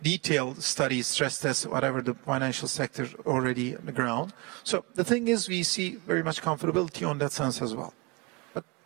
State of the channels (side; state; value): left; quieter; 26.8 dB